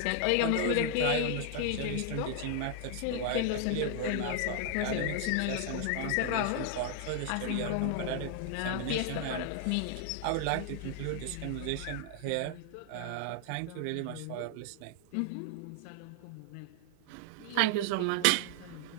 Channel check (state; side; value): different; both; correlation 0.00